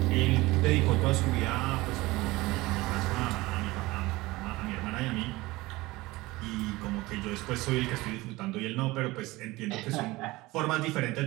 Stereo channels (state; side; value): quieter; left; 20.4 dB